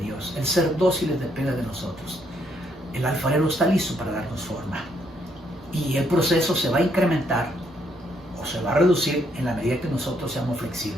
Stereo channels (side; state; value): both; normal; correlation 0.72